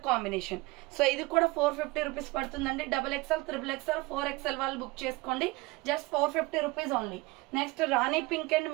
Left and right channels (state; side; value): quieter; left; 22.6 dB